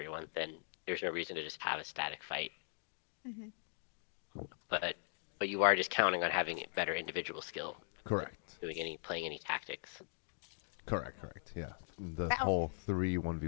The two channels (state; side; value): silent; right; digital silence